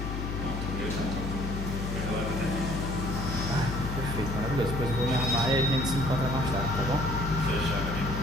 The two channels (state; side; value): noise; left; hum, 3 dB below the sound